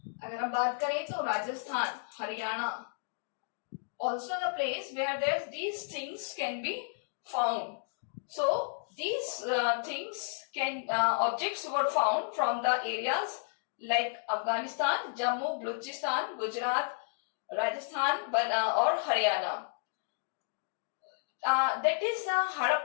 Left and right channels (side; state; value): right; silent; digital silence